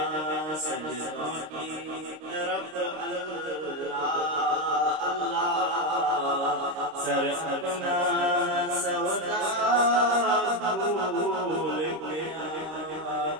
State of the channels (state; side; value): late; left; 26 ms